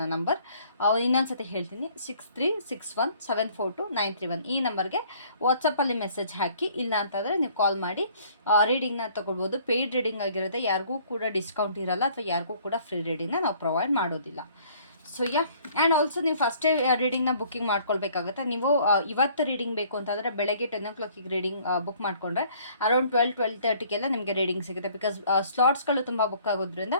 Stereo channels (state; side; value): inverted; both; correlation -0.58